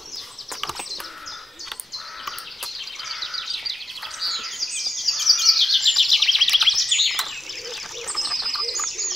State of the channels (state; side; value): normal; both; correlation 0.92